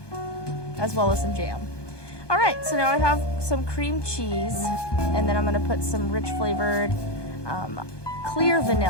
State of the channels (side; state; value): right; late; 1.2 ms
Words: as well as some jam. All right, so now I have some cream cheese, and then I'm gonna put some rich flavored clear